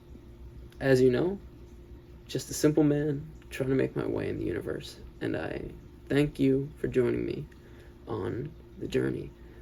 As you know, just a simple man trying to make my way in the universe, and I thank you for joining me on the journey.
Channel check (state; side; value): identical; both; correlation 1.00